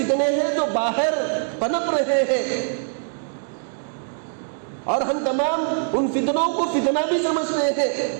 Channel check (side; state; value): left; silent; digital silence